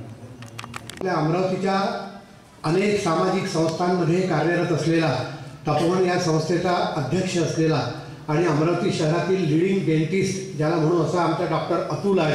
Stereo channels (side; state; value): both; identical; correlation 1.00